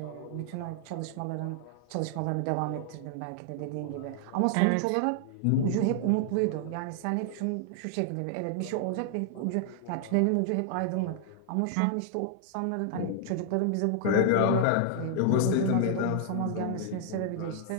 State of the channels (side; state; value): both; different; correlation 0.00